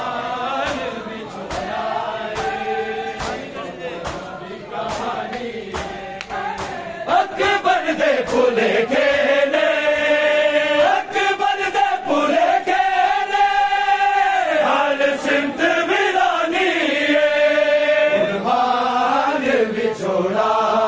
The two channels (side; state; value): both; identical; correlation 1.00